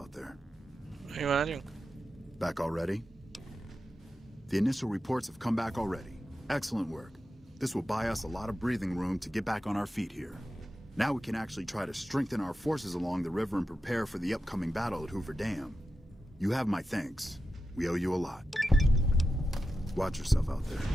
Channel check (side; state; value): both; normal; correlation 0.90